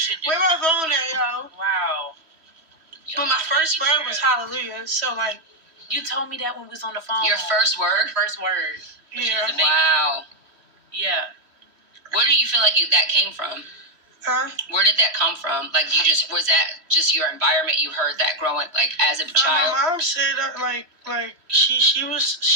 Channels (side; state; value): left; late; 3.1 ms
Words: do. Where my phone at, y'all? Wow. But my first word was hallelujah. So, like... You told me that when we was on the phone. Your first word? First word. Yeah. Wow. Yeah. Where do you feel like that came from? Huh? Where did that come from? Like, was that just your environment? You heard that growing, like, as a child? My mom said, like she was